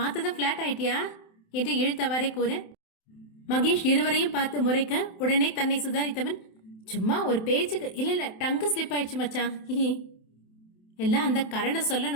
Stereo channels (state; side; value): late; right; 27 ms